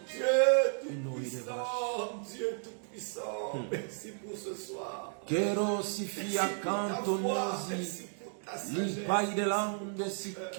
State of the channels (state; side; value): silent; left; 55 dB below the other